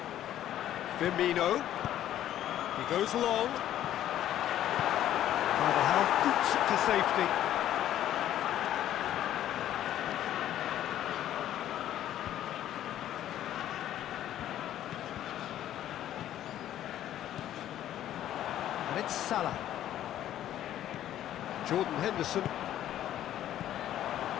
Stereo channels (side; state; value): right; quieter; 12.0 dB